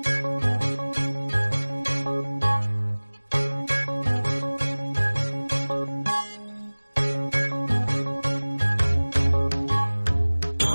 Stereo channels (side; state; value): both; inverted; correlation -1.00